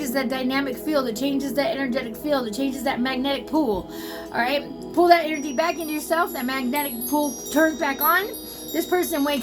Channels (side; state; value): both; identical; correlation 1.00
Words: that dynamic field, it changes that energetic field, it changes that magnetic pool. All right, pull that energy back into yourself, that magnetic pool turns back on, this person